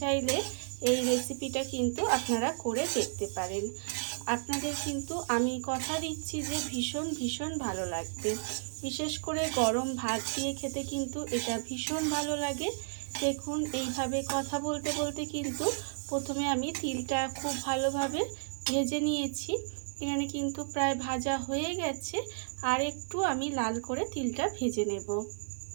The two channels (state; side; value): silent; left; 56 dB below the other